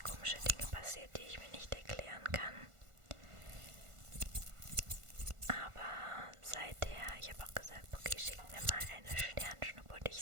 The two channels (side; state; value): left; late; 1.5 ms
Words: komische Dinge passiert, die ich mir nicht erklären kann. Aber seither, ich habe auch gesagt, okay, schick mir mal eine Sternschnuppe und